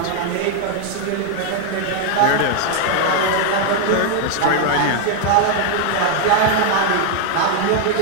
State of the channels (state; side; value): different; both; correlation 0.00